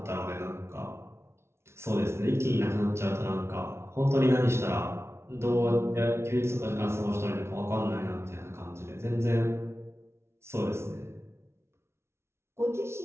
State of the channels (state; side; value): late; left; 0.13 ms